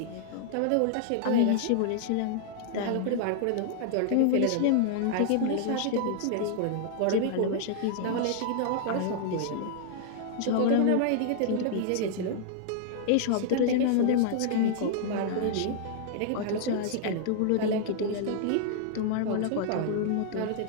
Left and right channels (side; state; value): both; different; correlation -0.01